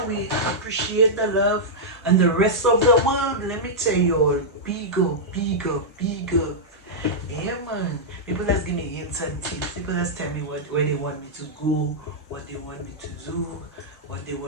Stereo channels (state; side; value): normal; both; correlation -0.09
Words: we appreciate the love and the rest of the world. Let me tell you all, bigger, bigger, bigger. Yeah, man. People just give me hints and tips. People just tell me where they want me to go, what they want me to do, what they